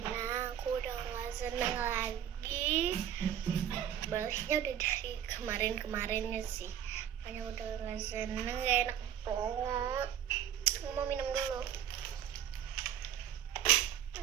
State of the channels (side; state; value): left; quieter; 10.0 dB